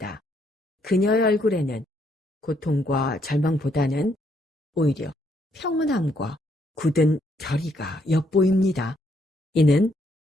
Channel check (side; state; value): both; normal; correlation 0.72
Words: 그녀의 얼굴에는 고통과 절망보다는 오히려 평온함과 굳은 결의가 엿보입니다. 이는